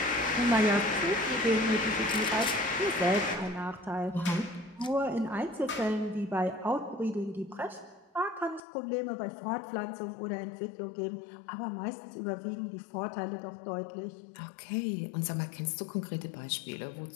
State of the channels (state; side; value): drops out; right; at 8.6 s